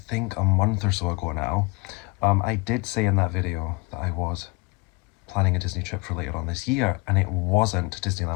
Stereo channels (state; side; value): quieter; right; 25.3 dB